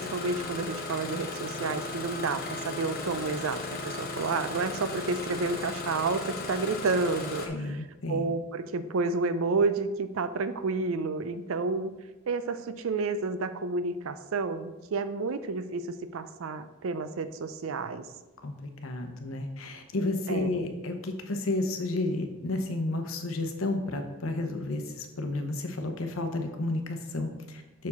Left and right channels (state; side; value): normal; both; correlation 0.11